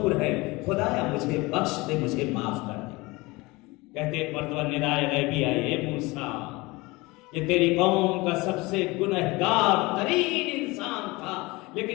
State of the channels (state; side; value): quieter; right; 23.0 dB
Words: ہے، خدایا مجھے بخش دے، مجھے معاف کر دے. کہتے ایک مرتبہ ندائے غیبی آئی اے موسیٰ یہ تیری قوم کا سب سے گنہگار ترین انسان تھا،